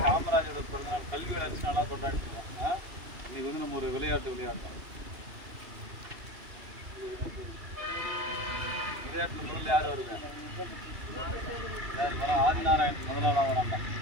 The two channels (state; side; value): late; left; 2.8 ms